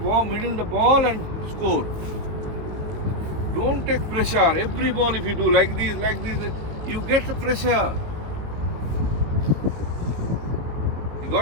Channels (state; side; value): late; left; 19 ms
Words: and score. Don't take pressure. Every ball, if you do like this, you get the pressure. You